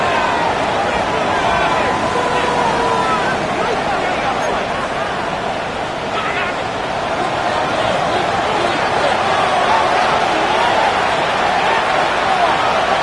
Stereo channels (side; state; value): both; identical; correlation 1.00